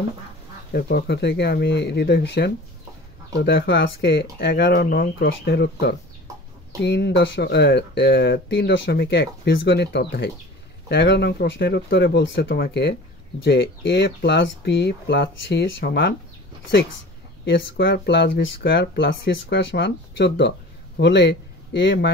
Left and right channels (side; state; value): both; normal; correlation 0.40